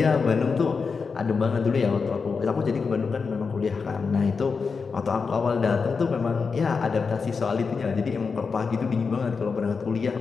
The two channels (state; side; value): quieter; right; 5.1 dB